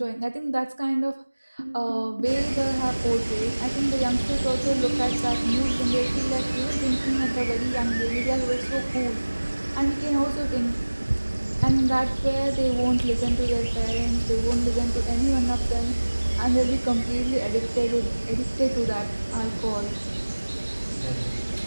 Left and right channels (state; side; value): inverted; both; correlation -1.00